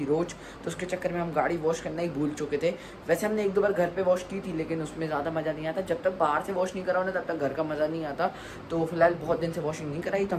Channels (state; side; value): identical; both; correlation 1.00